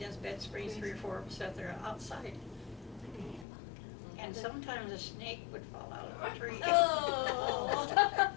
bed spring, 3 or 4 of us out there outside. And sometimes a snake would fall out of a tree. Oh.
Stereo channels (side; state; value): right; drops out; at 3.5 s